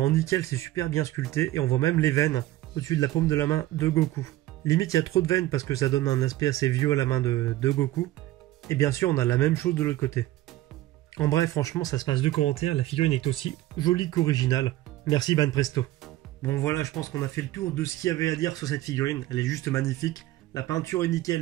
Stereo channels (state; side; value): quieter; left; 15.8 dB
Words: nickel, c'est super bien sculpté. Et on voit même les veines au-dessus de la paume de la main de Goku. Limite, il y a trop de veines parce que ça donne un aspect assez vieux à la main de Goku. Et bien sûr, on a la même chose de l'autre côté. En bref, franchement, ça se passe de commentaires. La figurine est aussi jolie qu'originale. Merci Banpresto. Bon voilà, je pense qu'on a fait le tour de ce qu'il y avait à dire sur cette figurine. Elle est juste magnifique. La peinture est